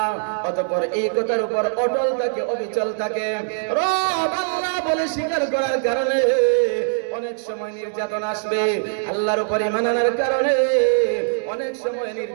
অতঃপর এই কথার উপর অটল থাকে, অবিচল থাকে, রব আল্লাহ বলে স্বীকার করার কারণে অনেক সময় নির্যাতন আসবে, আল্লাহর উপর ঈমান আনার কারণে অনেক সময়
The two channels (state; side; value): silent; left; digital silence